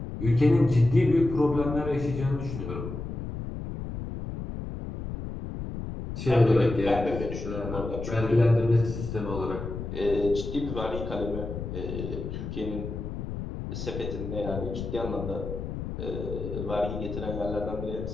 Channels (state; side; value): noise; left; rumble, 6 dB below the sound